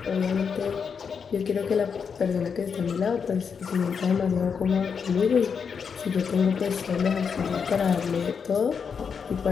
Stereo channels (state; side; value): quieter; right; 6.3 dB